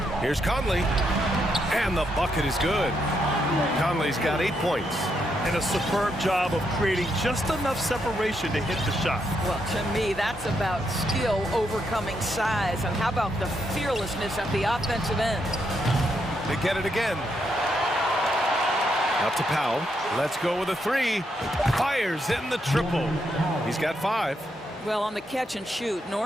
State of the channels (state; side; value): normal; both; correlation 0.79